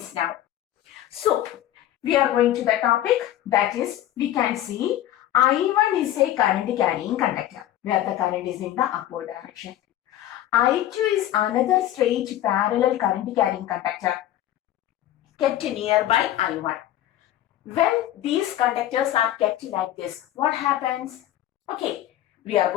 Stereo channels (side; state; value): right; quieter; 13.0 dB